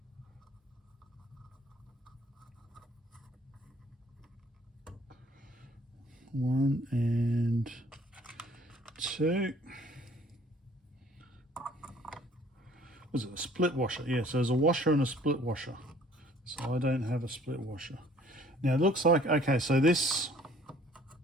One and two. Was it a split washer? Yeah, so there's a washer and a split washer. So I don't have a split washer. Now it looks like, okay, so this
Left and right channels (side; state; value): both; normal; correlation 0.56